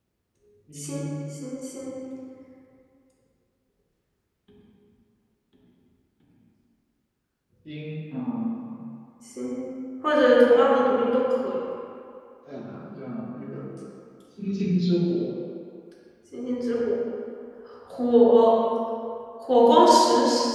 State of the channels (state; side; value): identical; both; correlation 1.00